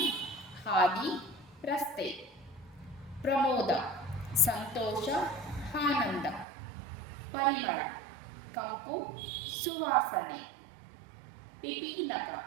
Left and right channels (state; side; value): drops out; left; at 6.5 s